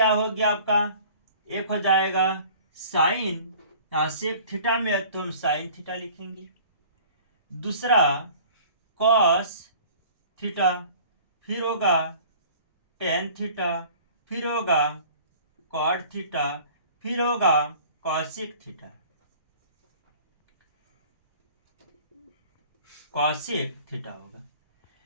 हो गया आपका, एक हो जाएगा साइन, यहाँ सेक थीटा में है तो हम साइन थीटा लिखेंगे। दूसरा कॉस थीटा, फिर होगा टेन थीटा, फिर होगा कॉट थीटा, फिर होगा कॉसेक थीटा। कॉसेक थीटा होगा।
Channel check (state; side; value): inverted; both; correlation -0.48